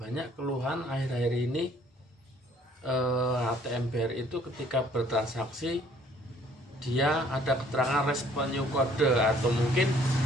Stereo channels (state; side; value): normal; both; correlation 0.59